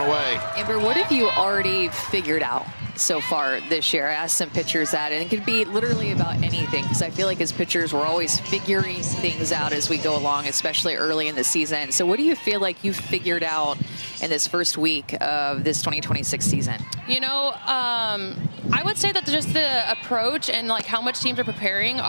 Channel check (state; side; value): inverted; both; correlation -1.00